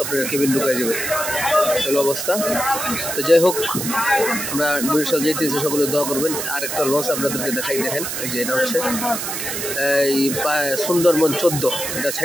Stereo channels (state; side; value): noise; right; hiss, 4 dB below the sound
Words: আপনার কেবিন ঢুকাই যাবে, এলো অবস্থা। তো যাই হোক, আমরা বরিশাল যাইতেছি, সকলে দোয়া করবেন। আর একটা লঞ্চ আপনাদেরকে দেখাই, দেখেন এই যে এটা হচ্ছে এই সুন্দরবন 14, এটা